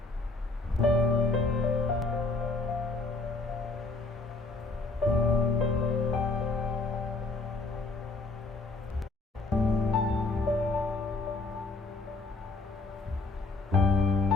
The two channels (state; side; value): quieter; right; 3.5 dB